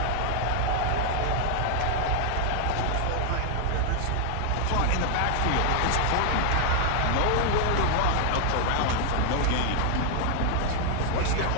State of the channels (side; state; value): both; different; correlation 0.00